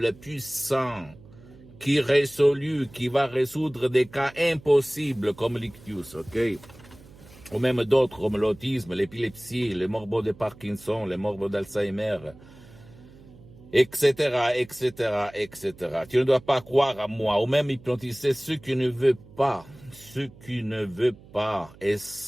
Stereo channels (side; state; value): right; noise; hum, 22 dB below the sound